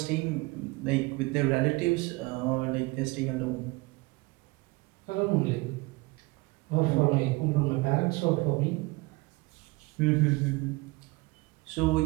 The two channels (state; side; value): quieter; left; 24.0 dB